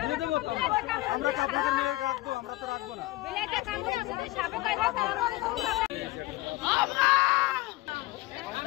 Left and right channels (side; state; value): right; quieter; 18.9 dB